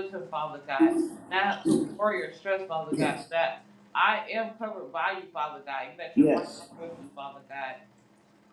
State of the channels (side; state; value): both; identical; correlation 1.00